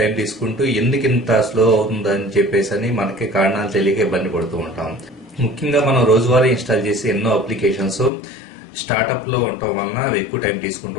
తీసుకుంటూ ఎందుకు ఇంత స్లో అవుతుందని చెప్పేసి మనకి కారణాలు తెలియక ఇబ్బంది పడుతూ ఉంటాం. ముఖ్యంగా మనం రోజువారీ ఇన్స్టాల్ చేసే ఎన్నో అప్లికేషన్స్ స్టార్ట్అప్ లో ఉండటం వలన అవి ఎక్కువ టైం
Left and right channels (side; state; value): right; drops out; at 8.1 s